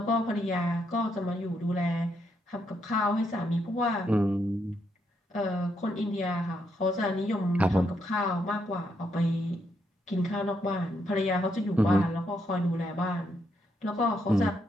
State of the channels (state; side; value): normal; both; correlation 0.78